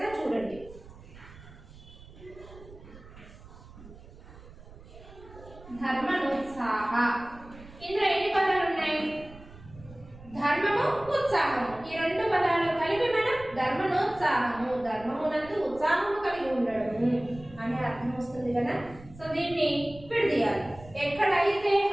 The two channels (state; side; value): noise; right; rumble, 19 dB below the sound